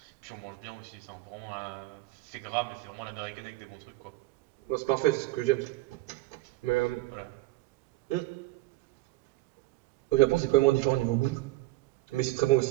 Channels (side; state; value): left; quieter; 19.0 dB